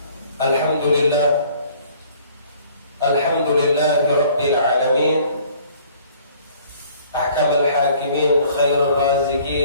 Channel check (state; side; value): inverted; both; correlation -0.56